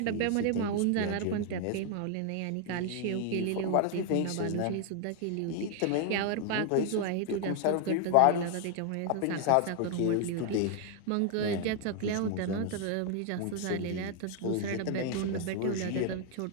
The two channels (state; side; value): different; both; correlation 0.00